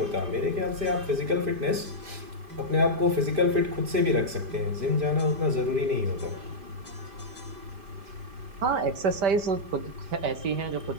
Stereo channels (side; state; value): left; late; 5.1 ms